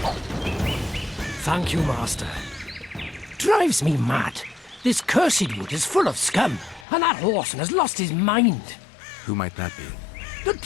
Thank you, Master. Drives me mad. This cursed wood is full of scum, and that horseman has lost his mind. Who might that be? The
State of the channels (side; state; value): right; drops out; at 6.9 s